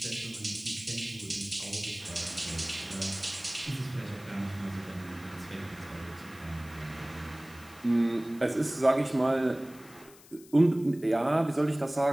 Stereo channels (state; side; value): noise; left; hiss, 22 dB below the sound